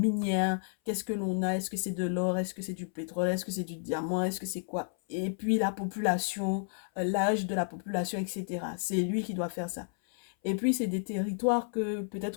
Qu'est-ce que l'on a? Est-ce que c'est de l'or? Est-ce que c'est du pétrole? Est-ce que c'est du diamant? Est-ce que c'est quoi? Et puis la population, l'âge de la population, etc. C'est lui qui doit faire ça. Et puis, c'est des territoires que peut-être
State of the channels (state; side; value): silent; right; 57 dB below the other